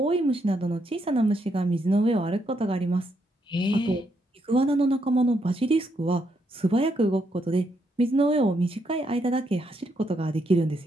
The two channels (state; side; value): normal; both; correlation 0.77